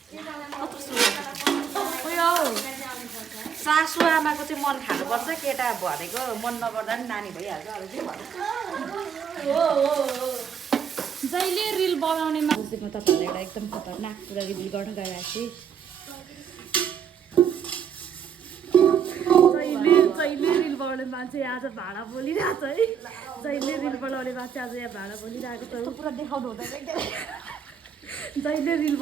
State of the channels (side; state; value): left; quieter; 7.5 dB